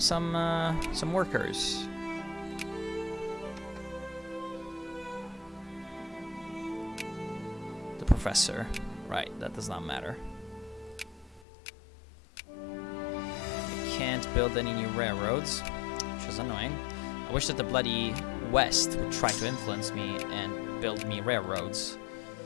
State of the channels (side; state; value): right; drops out; at 11.5 s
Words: workers. The professor. Right, that does not matter. I can't build any new railroads, which is annoying. I wish that the bloody West would try to influence me and build me railroads